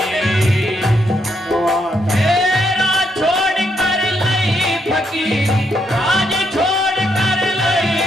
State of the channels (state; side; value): normal; both; correlation 0.77